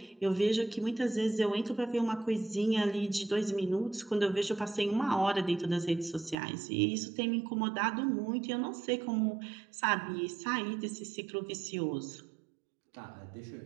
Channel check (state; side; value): drops out; left; at 6.4 s